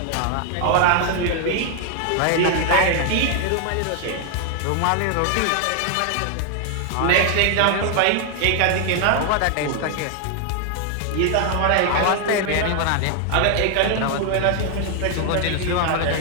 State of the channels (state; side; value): different; both; correlation 0.00